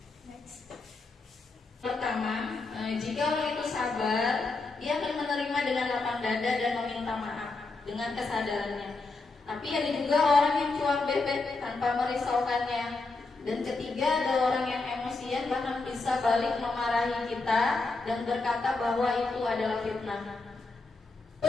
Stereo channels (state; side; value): quieter; right; 3.6 dB